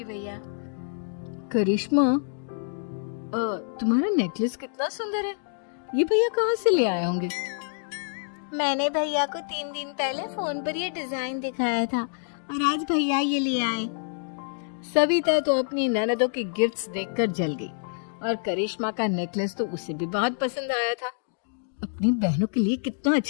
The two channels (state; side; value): silent; right; digital silence